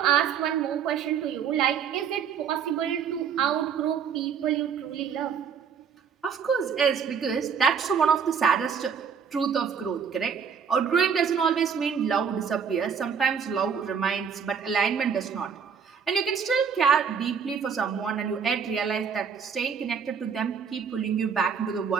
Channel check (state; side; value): quieter; left; 6.9 dB